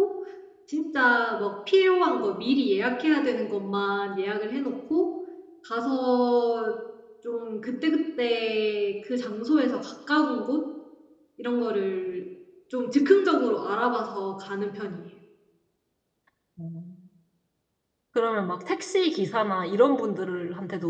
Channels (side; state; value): both; identical; correlation 1.00